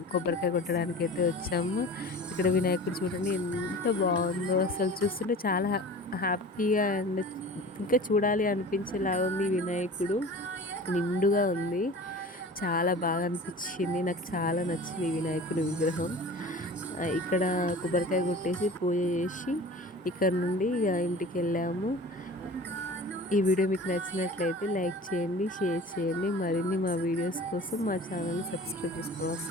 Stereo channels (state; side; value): normal; both; correlation 0.39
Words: కొబ్బరికాయ కొట్టడానికి అయితే వచ్చాము. ఇక్కడ వినాయకుడు చూడండి ఎంత బాగుందో, అసలు చూస్తుంటే చాలా హ్యాపీగా అండ్ ఇంకా చూడాలి అనిపించేలాగా ఉంది. వినాయకుడు నిండుగా ఉంది, చాలా బాగా అనిపించింది. నాకు చాలా నచ్చింది ఈ వినాయకుడి విగ్రహం. ఇక్కడ కొబ్బరికాయ కొట్టేసి పూజ చేసి ఇక్కడ నుండి ఇంటికి వెళ్ళాము. ఈ వీడియో మీకు నచ్చినట్లయితే లైక్ చేయండి, షేర్ చేయండి. మరిన్ని మా వీడియోస్ కోసం మా ఛానల్ని సబ్స్క్రైబ్ చేసుకోవడం